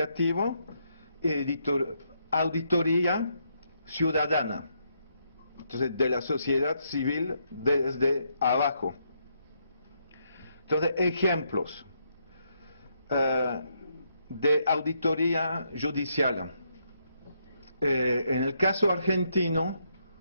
y auditoría ciudadana, entonces de la sociedad civil desde abajo. Entonces, ejemplos de auditoría judicial. En el caso argentino,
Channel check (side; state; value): both; inverted; correlation -0.76